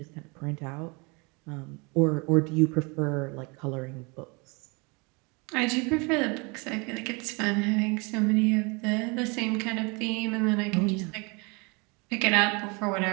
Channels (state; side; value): quieter; left; 29.4 dB